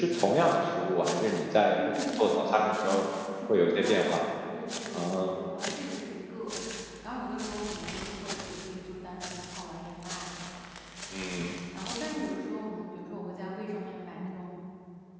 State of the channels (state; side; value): identical; both; correlation 1.00